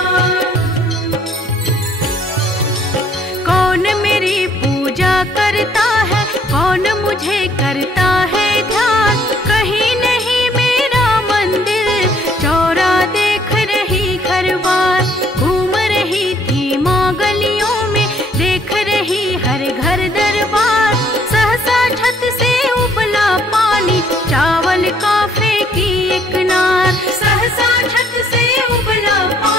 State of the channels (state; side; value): normal; both; correlation 0.64